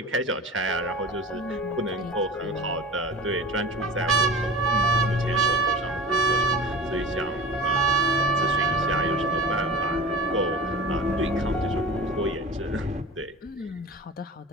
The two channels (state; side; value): normal; both; correlation 0.35